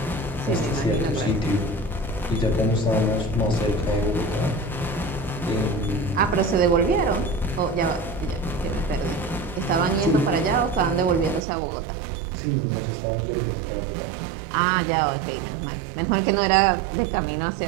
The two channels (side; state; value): left; drops out; at 11.4 s